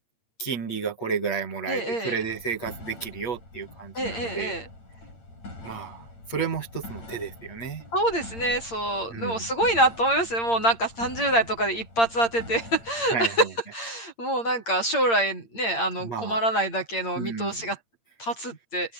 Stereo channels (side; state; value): right; late; 8.7 ms